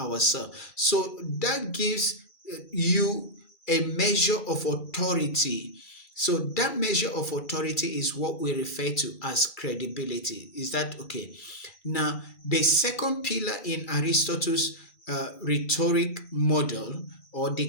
So that gives you a measure of authority. So that measure of authority is what we refer to as credibility. Is that okay? Now, the second pillar in Aristotle's rhetoric model or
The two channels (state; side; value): late; right; 2.3 ms